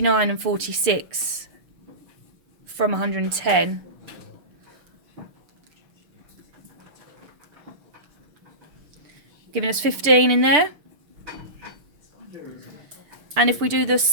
and 46 from 110, giving us 15 in there. And if we do the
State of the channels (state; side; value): late; left; 6.8 ms